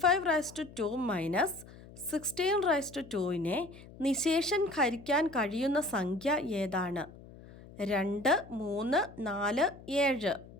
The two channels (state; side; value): noise; left; hum, 19 dB below the sound